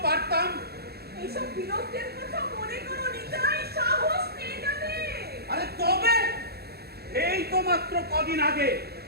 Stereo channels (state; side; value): late; left; 0.46 ms